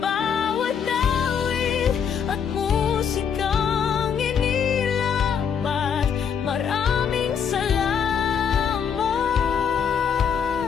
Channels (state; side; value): quieter; right; 7.3 dB